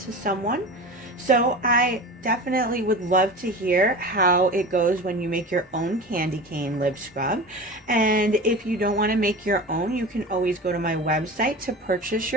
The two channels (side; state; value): both; normal; correlation 0.32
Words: someone. So I definitely would love to hear how it goes when you make your own candy cane lip scrub. And if you don't want to make your own, you can always go to my website to purchase